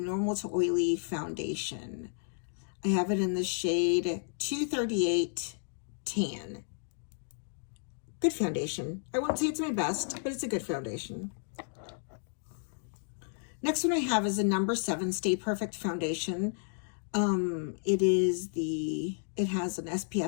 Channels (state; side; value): silent; right; digital silence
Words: to Oily Foundation. I have it in the shade 238 Tan. Good foundation. I won't say it's my best, but it's a good foundation. Next one I have is the number 7 Stay Perfect Foundation. It has an